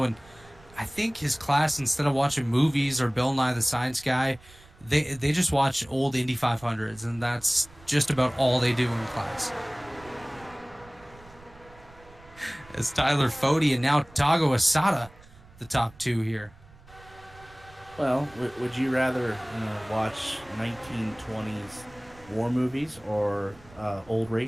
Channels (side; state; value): right; noise; rumble, 24 dB below the sound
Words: and I think his class, instead of watching movies or Bill Nye the Science Guy, they just watch old Indy 500s, and that's just about all they do in class. As Tyler Fode and now Tago Asada, the top 2 here. Well, would you rather watch 1920s war movies or old